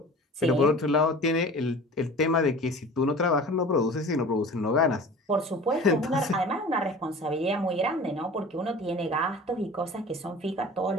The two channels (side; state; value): both; normal; correlation 0.40